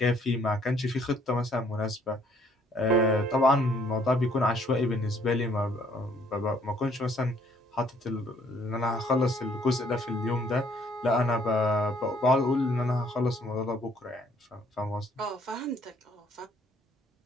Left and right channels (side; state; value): both; normal; correlation 0.64